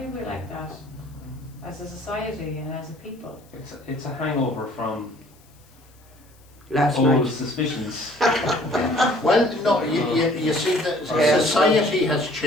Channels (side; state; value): left; noise; hiss, 30 dB below the sound